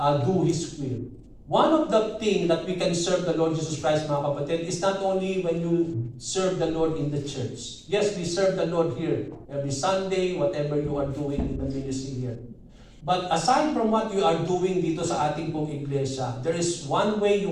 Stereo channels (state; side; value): identical; both; correlation 1.00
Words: do His will? One of the things that we can serve the Lord Jesus Christ, mga kapatid, is not only when you serve the Lord in the church. Yes, we serve the Lord here every Sunday, whatever you are doing in the ministry here. But aside from what you are doing dito sa ating pong iglesia, there is one way you